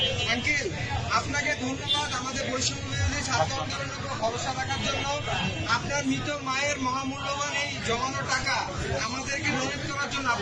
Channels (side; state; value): both; identical; correlation 1.00